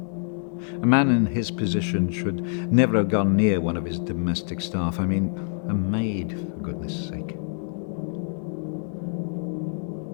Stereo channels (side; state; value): right; silent; 58 dB below the other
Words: A man in his position should never have gone near one of his domestic staff. I mean, a maid, for goodness sake.